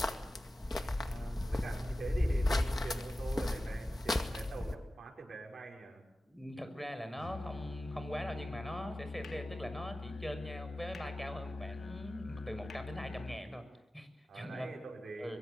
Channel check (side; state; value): both; normal; correlation 0.95